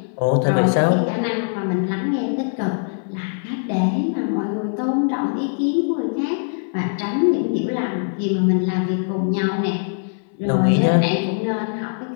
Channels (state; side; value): silent; right; 64 dB below the other